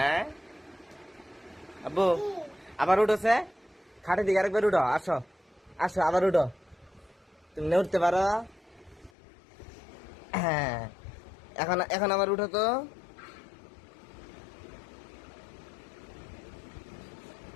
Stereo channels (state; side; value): drops out; right; at 9.1 s